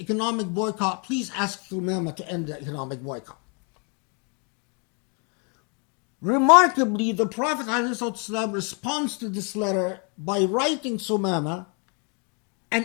boycott, please ask Thumama to end the economic boycott. Remarkably, the Prophet ﷺ responds to this letter by writing Thumama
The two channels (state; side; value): quieter; right; 36.4 dB